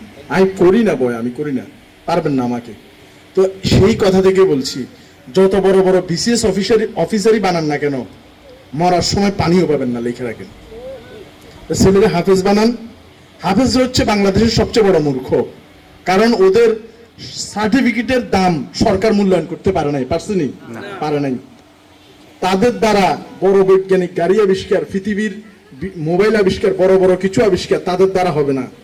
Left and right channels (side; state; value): both; identical; correlation 1.00